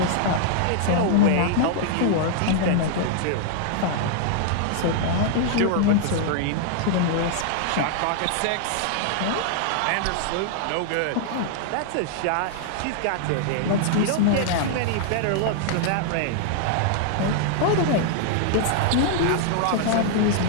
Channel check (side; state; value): both; different; correlation -0.01